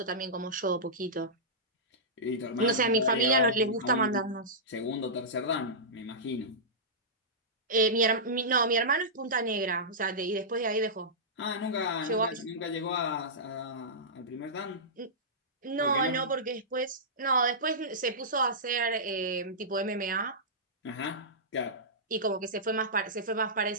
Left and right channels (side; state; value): both; normal; correlation -0.16